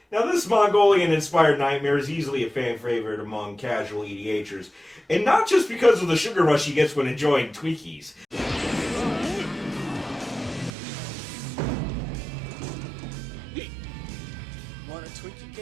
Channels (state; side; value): drops out; left; at 10.7 s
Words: Now, this Mongolian-inspired nightmare is easily a fan favorite among casual EDHers, and not just because of the sugar rush he gets when enjoying Twinkies. Want a Twinkie,